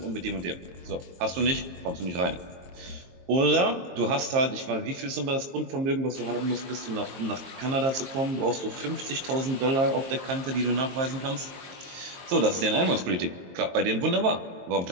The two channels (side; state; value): left; late; 22 ms